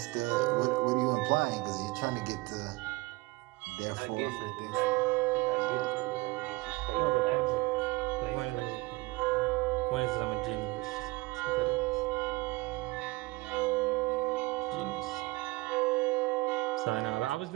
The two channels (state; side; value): quieter; left; 22.9 dB